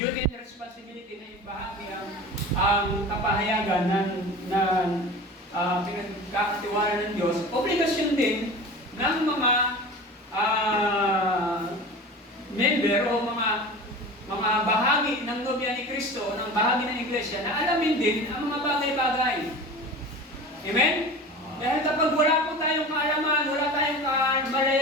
and responsibility na ibahagi ang kapahayagan na pinagkakatiwala ng Diyos, obligasyon din ng mga member o mga bahagi ng nobya ni Kristo, ng bahagi ng iglesia, na alamin din ang mga bagay-bagay. Amen? Dahil kapag wala po tayong kaalaman, wala tayong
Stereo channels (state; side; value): normal; both; correlation 0.35